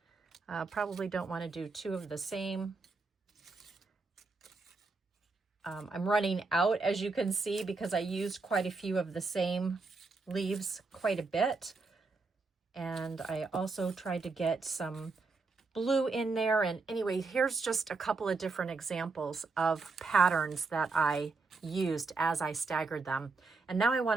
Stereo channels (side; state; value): left; quieter; 4.0 dB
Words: Probably don't want to do 2 of the same. I'm running out, as you can see, because I used quite a few of the same leaves quite a bit. And I also tried to get some blue in there. And anyway, here's just a couple of different examples of patterns that I used as I staggered them. And now I